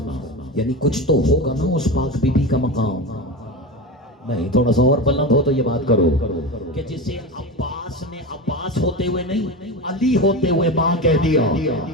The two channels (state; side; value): normal; both; correlation 0.23